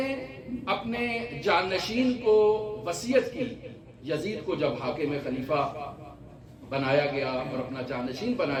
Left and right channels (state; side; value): identical; both; correlation 1.00